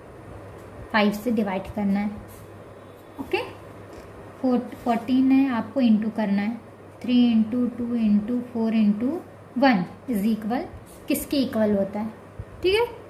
5 से डिवाइड करना है, ओके। 14 है, आपको इंटू करना है 3 into 2 into 4 into 1 is equal, किसके इक्वल होता है, ठीक है।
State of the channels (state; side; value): identical; both; correlation 1.00